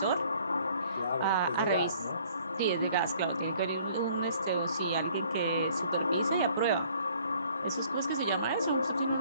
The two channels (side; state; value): both; inverted; correlation -0.58